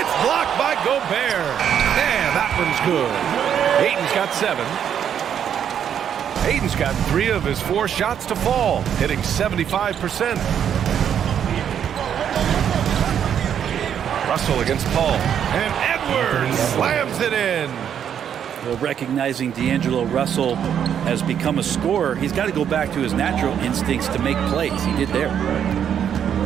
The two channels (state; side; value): quieter; left; 8.8 dB